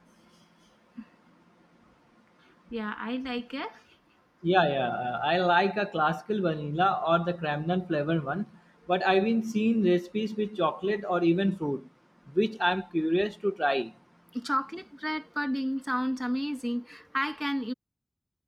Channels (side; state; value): both; identical; correlation 1.00